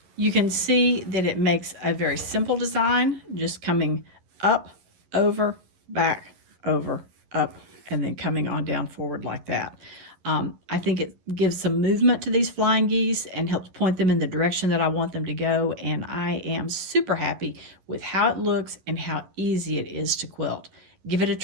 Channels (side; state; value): left; late; 11 ms